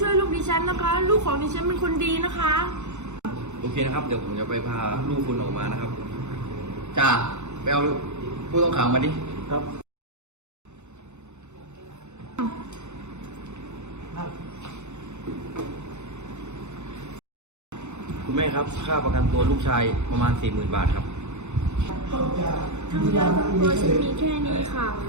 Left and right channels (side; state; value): left; late; 0.83 ms